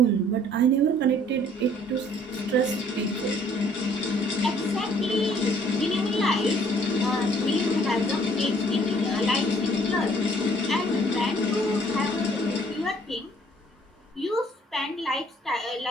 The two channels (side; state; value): both; normal; correlation 0.60